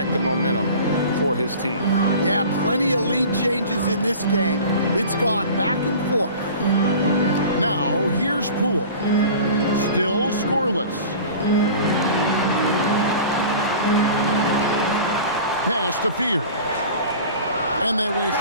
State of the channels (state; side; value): inverted; both; correlation -0.40